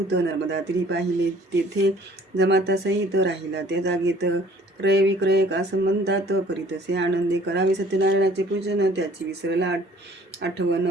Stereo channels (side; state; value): both; normal; correlation 0.55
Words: नर्मदा तीरी पाहिले. तेथे जमाता सहित राहिला त्या जागेत. क्रय विक्रय का संबंधात करीतसे आनंदे. करावे सत्यनारायणाचे पूजन, त्याची विसरला आठवण.